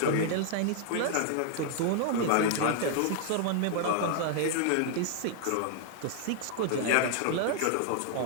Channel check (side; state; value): both; different; correlation 0.00